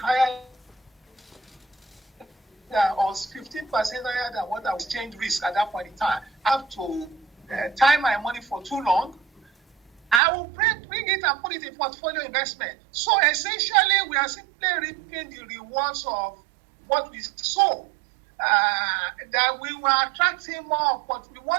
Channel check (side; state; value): left; drops out; at 10.2 s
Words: or 15% higher than what I was exchange risk at that point in time. I have to time my money for too long. I will bring it and put it in portfolio investment. So essentially, we are simply reaping the rewards of what we sow. That we were attracting we